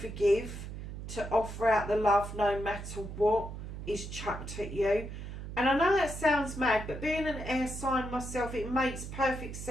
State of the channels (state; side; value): noise; right; hum, 9 dB below the sound